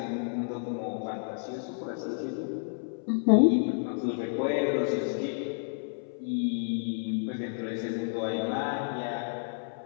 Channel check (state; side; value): silent; right; 57 dB below the other